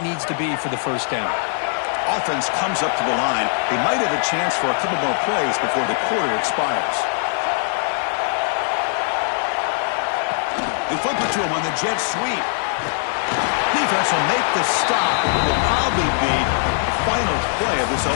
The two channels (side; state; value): right; silent; digital silence